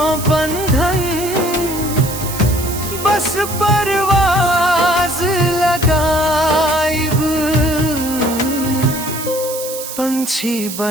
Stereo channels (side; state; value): right; noise; hiss, 9 dB below the sound